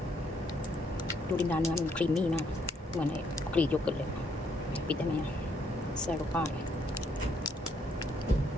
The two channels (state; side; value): normal; both; correlation 0.71